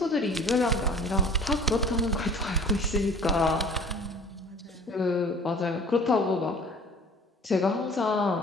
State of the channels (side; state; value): both; normal; correlation 0.47